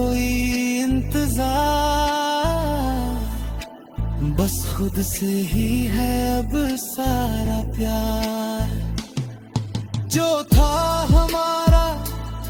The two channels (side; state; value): both; identical; correlation 1.00